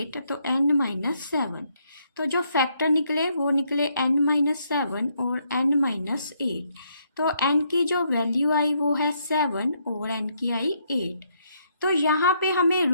तो n माइनस 7. तो जो फैक्टर निकले वो निकले n माइनस 7 और n माइनस 8. तो n की जो वैल्यू आई वो है 7 और n की आई 8. तो यहाँ पे हमें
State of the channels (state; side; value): inverted; both; correlation -0.73